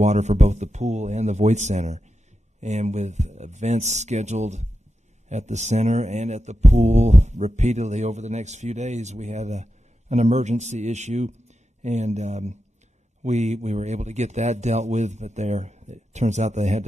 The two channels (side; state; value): both; normal; correlation 0.90